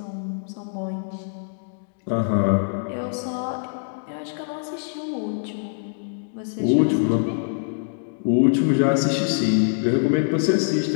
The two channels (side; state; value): right; silent; digital silence